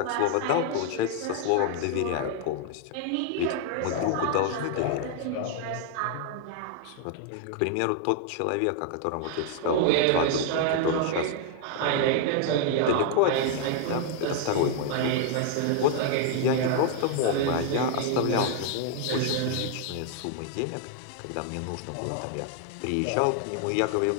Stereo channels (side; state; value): both; different; correlation 0.00